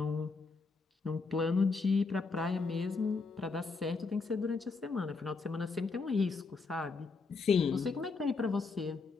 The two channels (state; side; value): quieter; right; 4.3 dB